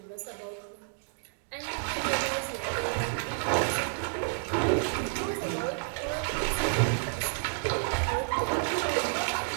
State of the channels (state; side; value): silent; left; 58 dB below the other